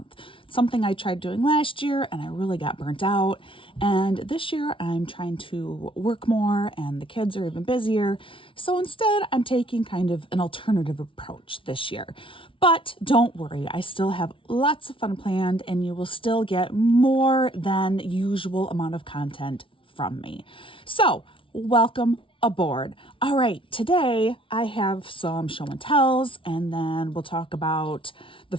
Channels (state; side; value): late; right; 0.25 ms